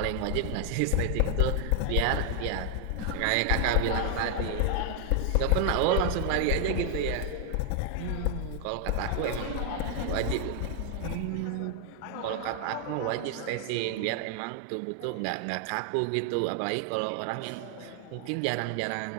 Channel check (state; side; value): different; both; correlation 0.00